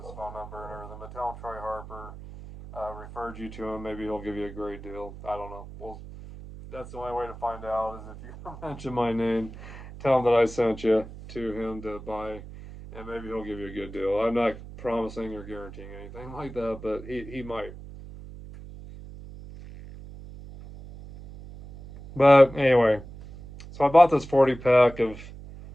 phone number and everything. But tell him Troy Harper referred you to him. Maybe he'll give you a great deal. I don't know. Well, that's the only way to find out is if you mention my name. Tell him that I sent you to him to buy, and maybe he'll give you a good deal. I'm not promising or guaranteeing anything like that, but he might. But anyway, so I bought this 40 pack of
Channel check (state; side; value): noise; right; hum, 14 dB below the sound